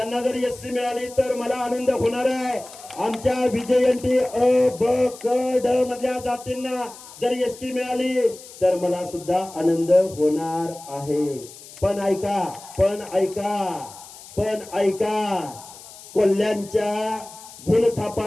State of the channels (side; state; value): left; noise; hiss, 18 dB below the sound